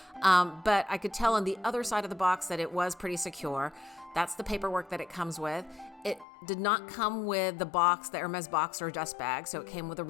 but I could tell on the other side of the box that it was pretty secure. That's the paperwork that it comes with. It did not come with the box, the Hermes box or dust bag, so it came with a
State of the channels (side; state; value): right; drops out; at 6.2 s